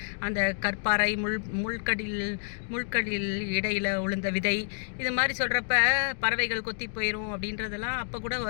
அந்த கற்பாறை முள்கடில் இடையில் உளுந்த விதை, இது மாதிரி சொல்கிறப்ப பறவைகள் கொத்தி போயிடும் அப்படின்றதெல்லாம் அப்போ கூட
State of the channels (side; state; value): right; silent; digital silence